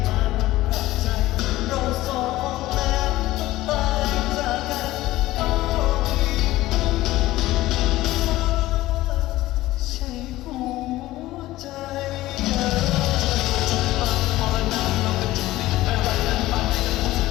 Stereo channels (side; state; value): right; quieter; 16.7 dB